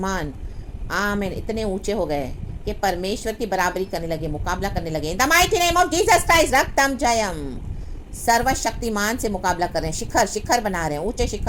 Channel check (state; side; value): identical; both; correlation 1.00